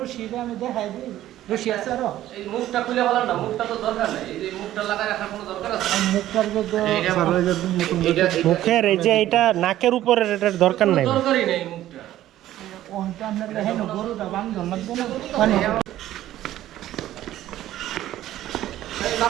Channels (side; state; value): left; quieter; 13.5 dB